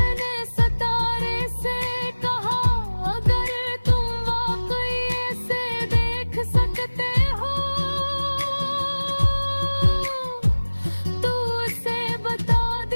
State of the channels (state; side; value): inverted; both; correlation -1.00